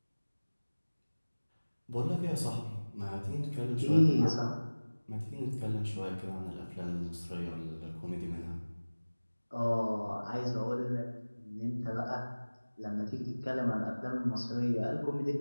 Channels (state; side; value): inverted; both; correlation -1.00